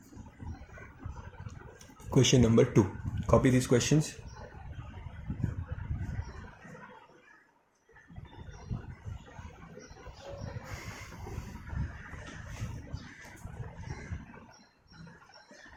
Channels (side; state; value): both; identical; correlation 1.00